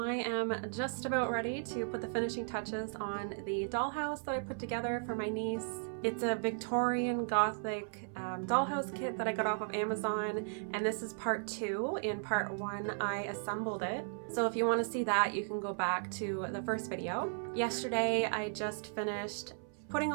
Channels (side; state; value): left; silent; 54 dB below the other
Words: am just about ready to put the finishing touches on the dollhouse that I put together for my niece. It's a Victorian Gothic dollhouse kit that I got off of Amazon, and this is part 2. In part 1 I assembled it. So if you want to see that, you can go back to the first video. Yesterday I just finished putting